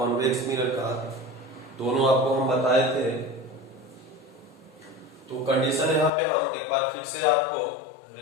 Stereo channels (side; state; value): right; drops out; at 6.1 s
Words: मिरर का, दोनों आपको हम बताए थे। तो कंडीशन यहाँ पे हम एक बार फिर से आपको